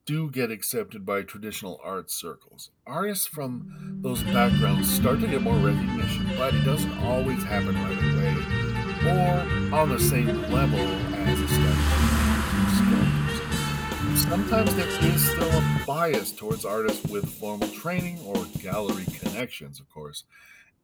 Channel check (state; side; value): identical; both; correlation 1.00